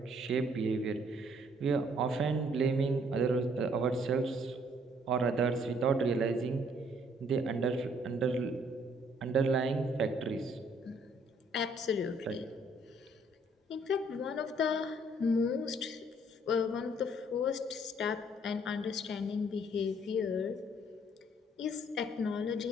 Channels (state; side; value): normal; both; correlation 0.63